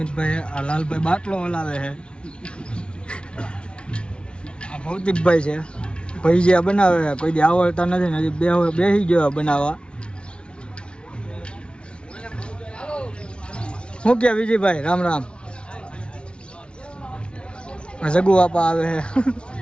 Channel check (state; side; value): late; right; 0.057 ms